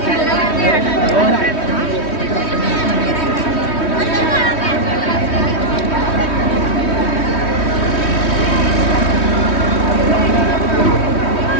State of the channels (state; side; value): late; right; 3.1 ms